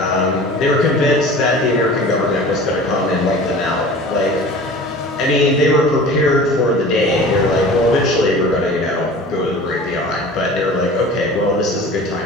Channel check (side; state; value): both; normal; correlation 0.40